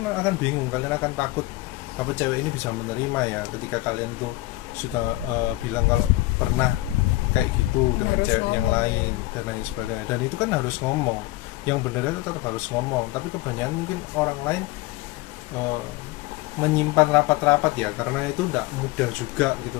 akan bingung, kalian akan takut apa cewek ini bisa menerima ya ketika kalian tuh sudah bilang kalau pernah kayak gitu dengan harus cewek yang ngomong. lain dan lain sebagainya. Dan itu kan harus ngomong, yang benar itu tetap harus ngomong, tapi kebanyakan mungkin orang lain menyimpan rapat-rapat ya, karena itu tidak mudah juga gitu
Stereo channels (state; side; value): quieter; right; 18.4 dB